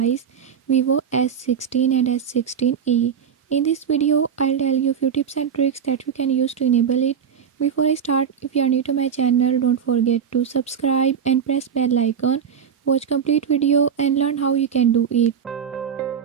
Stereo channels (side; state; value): left; quieter; 7.7 dB